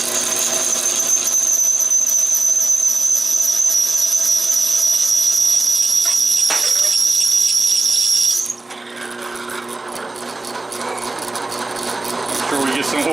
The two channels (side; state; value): left; quieter; 3.1 dB